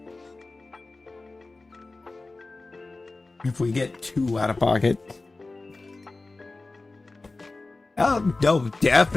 If we get too out of pocket. Oh, no,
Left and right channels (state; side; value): quieter; right; 3.3 dB